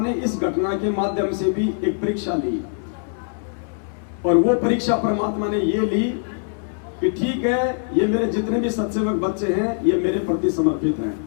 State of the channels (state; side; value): silent; right; 60 dB below the other